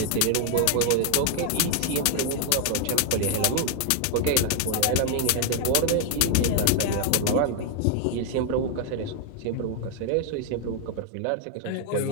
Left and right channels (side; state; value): both; different; correlation 0.00